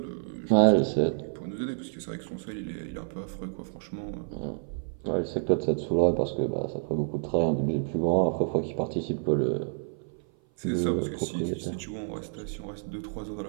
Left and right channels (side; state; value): left; silent; 56 dB below the other